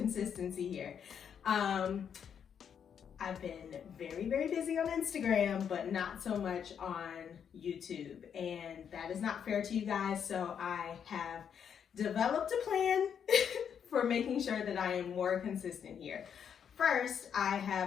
here. I've been very busy on Instagram, but not so much on YouTube, and that is not fair to you guys, so I have developed a plan for making sure that I am more consistent here. First, I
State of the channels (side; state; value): right; quieter; 7.9 dB